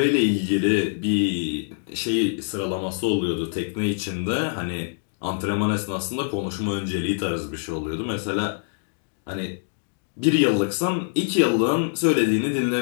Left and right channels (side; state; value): right; silent; digital silence